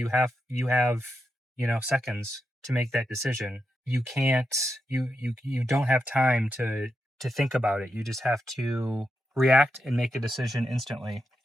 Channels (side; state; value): both; normal; correlation 0.86